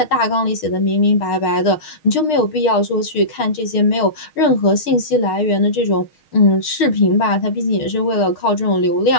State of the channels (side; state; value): right; late; 6.4 ms